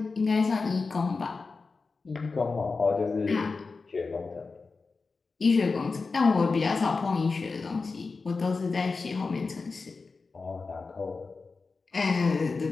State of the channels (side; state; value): right; quieter; 4.2 dB